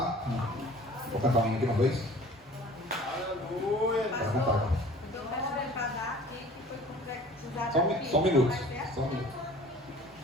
Vou cantar um aqui uma vez? Aleluia! Bora cantar. Só um minuto.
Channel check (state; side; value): normal; both; correlation 0.47